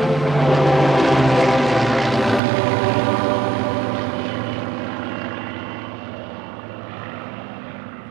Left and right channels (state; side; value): drops out; left; at 2.4 s